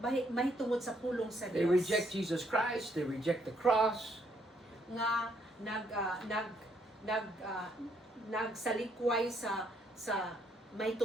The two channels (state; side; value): normal; both; correlation 0.71